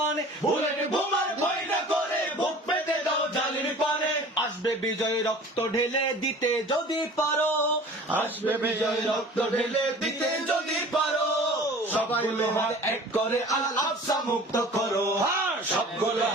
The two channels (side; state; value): both; normal; correlation 0.44